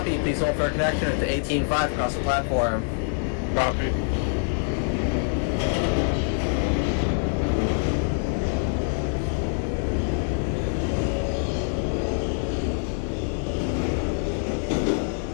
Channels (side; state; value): right; silent; digital silence